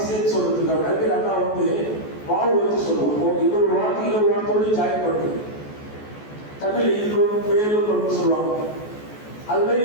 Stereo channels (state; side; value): late; right; 14 ms